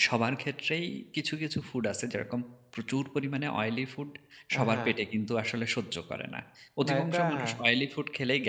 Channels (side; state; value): both; identical; correlation 1.00